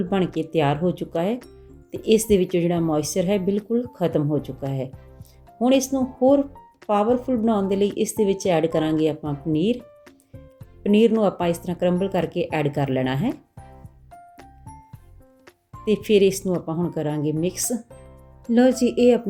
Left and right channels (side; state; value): both; identical; correlation 1.00